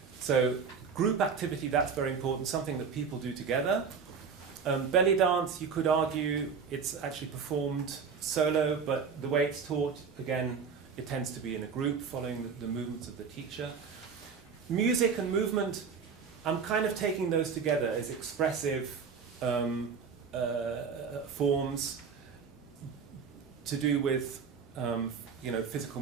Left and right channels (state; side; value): quieter; left; 5.9 dB